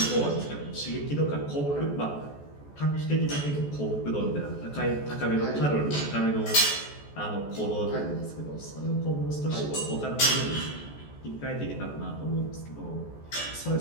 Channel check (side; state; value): right; late; 14 ms